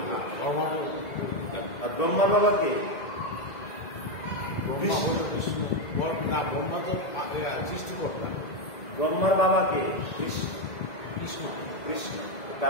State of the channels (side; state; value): right; late; 2.0 ms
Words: আর ব্রহ্মার বাবা কে? ব্রহ্মার বাবা কে? কৃষ্ণ। কৃষ্ণ